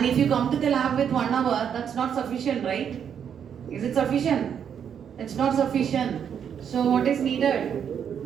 if you come to the lab with 1 hour, that's not sufficient, right? Is it sufficient? It's not sufficient. So what is needed?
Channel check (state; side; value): quieter; left; 8.1 dB